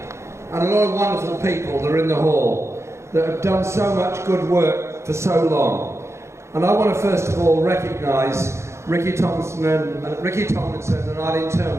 And a lot of wonderful people that are in the hall that have done so much good work for so long. And I want to first of all recognise Ricky Tomlinson and Eileen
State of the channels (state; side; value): late; left; 0.13 ms